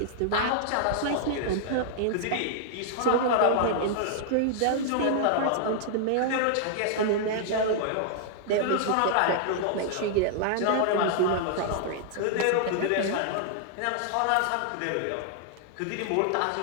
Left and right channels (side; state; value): both; different; correlation -0.01